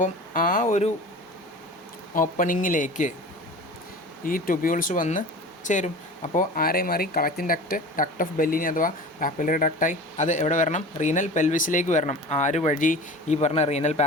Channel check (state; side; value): normal; both; correlation 0.37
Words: ആ ഒരു ഓപ്പണിങ്ങിലേക്ക് ഈ ട്യൂബ്യൂൾസ് വന്ന് ചേരും. അപ്പോൾ ആരെ മാറി? കളക്റ്റിംഗ് ഡക്റ്റ് ഓഫ് ബെല്ലിനി അഥവാ പാപ്പിലറി ഡക്റ്റായി. അത് എവിടെ വരണം? റീനൽ പെൽവിസിലേക്ക് വരണം. ആര് വഴി? ഈ പറഞ്ഞ റീനൽ